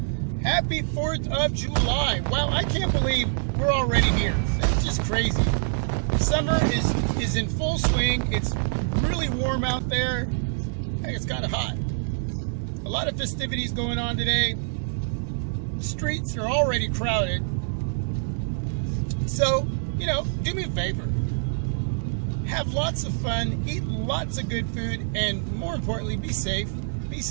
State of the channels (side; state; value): left; silent; digital silence